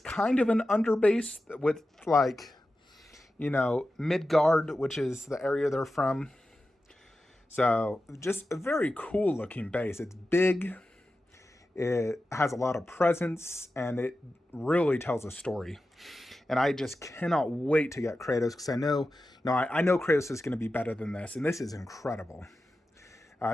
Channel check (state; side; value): normal; both; correlation 0.93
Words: of an underbase with like, you know, Midgard, which is the area they're from. So just a very cool looking base. It's big. It has a lot of presence and it really tells a story. And I just cannot wait to get Kratos because I know Kratos is going to be better than this. And this is incredible.